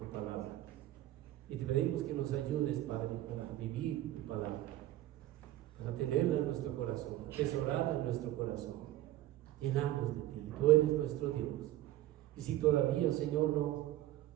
palabra y te pedimos que nos ayudes, Padre, para vivir tu palabra, para tenerla en nuestro corazón, atesorarla en nuestro corazón, llenarnos de ti. Tú eres nuestro Dios. Y si todavía, Señor,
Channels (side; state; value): left; quieter; 14.7 dB